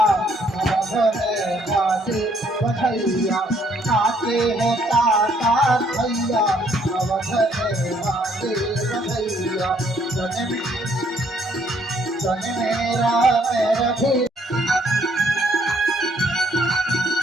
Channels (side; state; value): both; normal; correlation 0.67